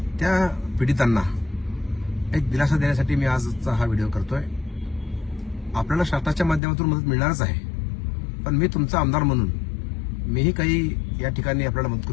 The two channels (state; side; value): drops out; right; at 6.6 s